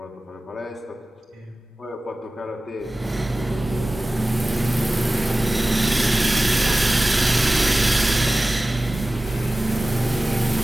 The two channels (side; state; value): both; normal; correlation 0.96